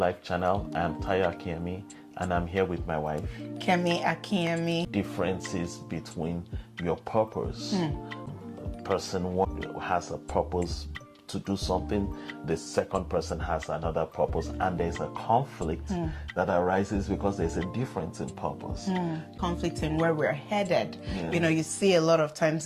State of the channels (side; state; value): both; identical; correlation 1.00